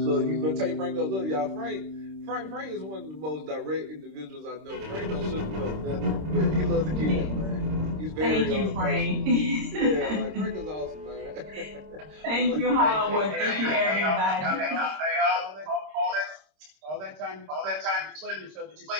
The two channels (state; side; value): late; left; 26 ms